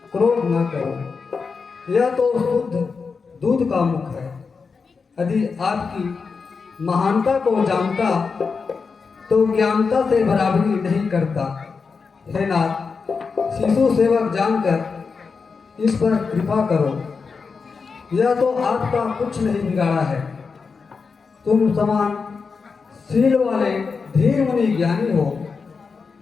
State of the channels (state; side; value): quieter; right; 5.1 dB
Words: क्रोध न करो। यह तो शुद्ध दूध का मुख है। यदि आपकी महानता को जानता तो ज्ञानता से बराबरी नहीं करता। हे नाथ, शिशु सेवक जानकर इस पर कृपा करो। यह तो आपका कुछ नहीं बिगाड़ा है। तुम समान शील वाले धीर मुनि ज्ञानी हो।